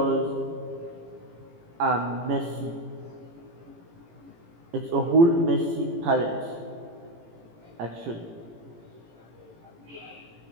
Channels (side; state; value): left; late; 18 ms